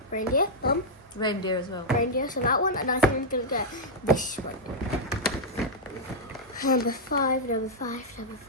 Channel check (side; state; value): both; normal; correlation -0.05